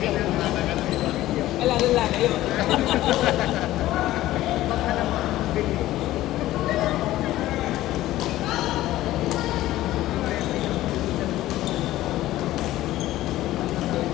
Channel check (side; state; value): right; quieter; 15.3 dB